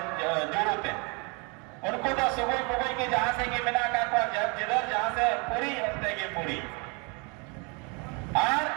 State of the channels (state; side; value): quieter; left; 32.0 dB